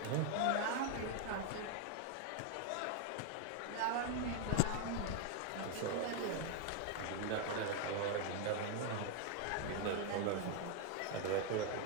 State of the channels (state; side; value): different; both; correlation 0.01